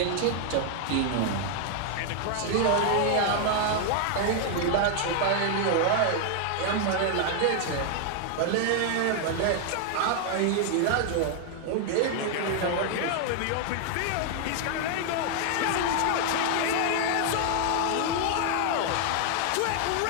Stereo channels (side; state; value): both; different; correlation 0.00